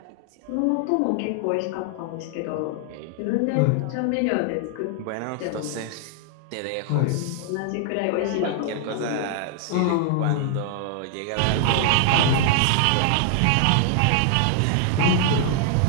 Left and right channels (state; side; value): different; both; correlation 0.00